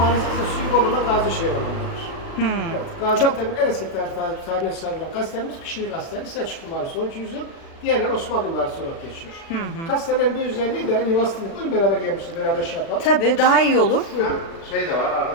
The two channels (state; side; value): late; right; 36 ms